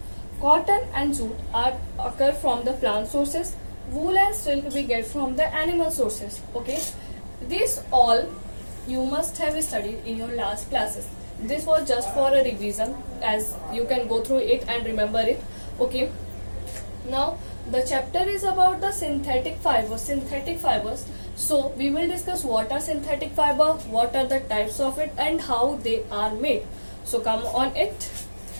Cotton and jute occur from the plant sources. Wool and silk we get from the animal sources. Okay, this all you must have studied in your last classes. This was just for a revision, as you can go through it and remember it. Okay, now the chapter is about the synthetic fibers. So we will discuss what are synthetic fiber, what are the types of it and how they are made. So come on it.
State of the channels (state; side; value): inverted; both; correlation -1.00